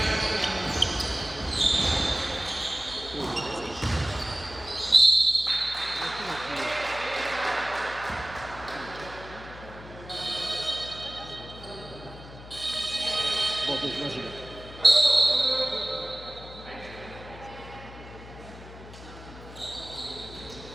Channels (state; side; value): noise; left; hum, 16 dB below the sound